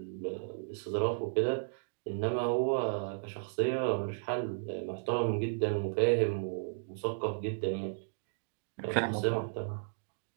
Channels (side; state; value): left; silent; digital silence